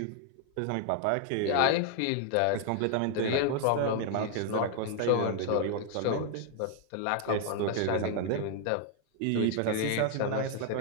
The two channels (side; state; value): both; different; correlation 0.00